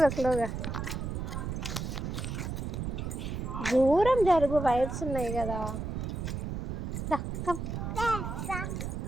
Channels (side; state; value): right; noise; rumble, 4 dB below the sound